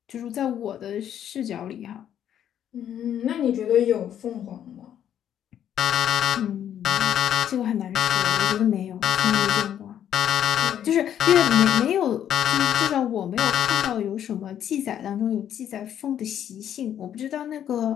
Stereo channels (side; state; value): right; quieter; 10.0 dB